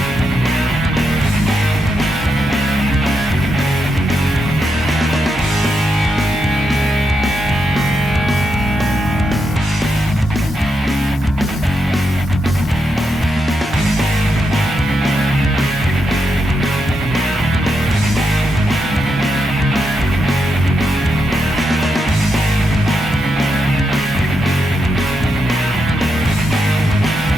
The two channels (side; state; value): both; normal; correlation 0.83